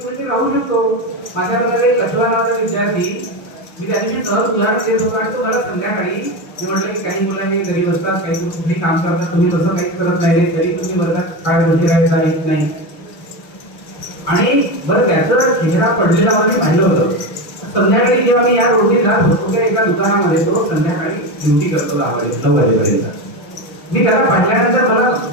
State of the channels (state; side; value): late; right; 6.3 ms